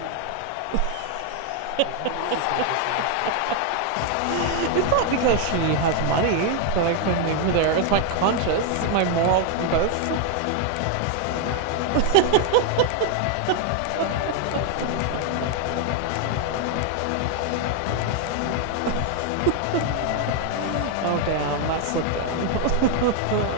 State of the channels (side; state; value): both; different; correlation 0.00